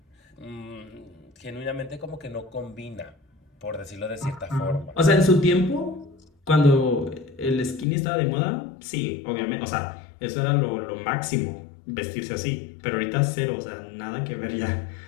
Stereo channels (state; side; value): drops out; right; at 7.9 s